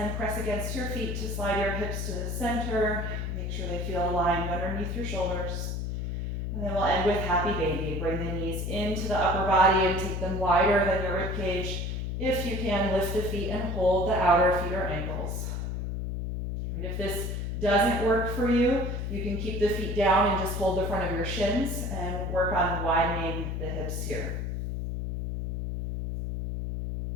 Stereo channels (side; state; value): left; noise; hum, 3 dB below the sound